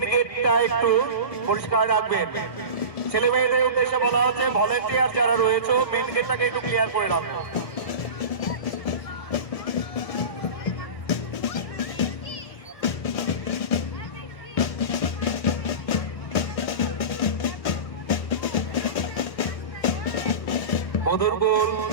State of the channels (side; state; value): right; late; 1.4 ms